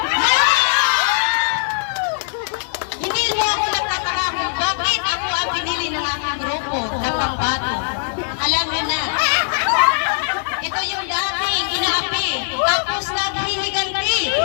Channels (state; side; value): silent; right; digital silence